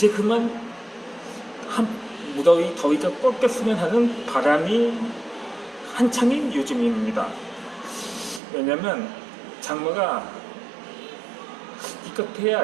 그만 무더위 더위가 꺾였으면 하는 바람이 한창인 요즘입니다. 왜냐면 장마가 기껏해야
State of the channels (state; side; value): drops out; left; at 8.4 s